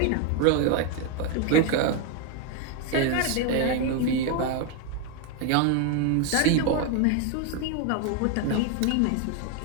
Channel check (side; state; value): both; different; correlation 0.01